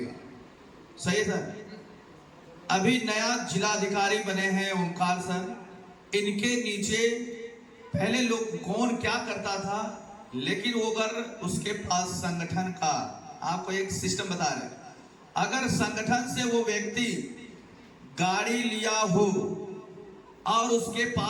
सही है सर? अभी नया जिलाधिकारी बने हैं ओंकार सर, इनके नीचे पहले लोग कौन क्या करता था, लेकिन वो अगर उसके पास संगठन का, आपको एक सिस्टम बता रहे, अगर संगठन से वो व्यक्ति गाड़ी लिया हो और उसके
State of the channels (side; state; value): both; identical; correlation 1.00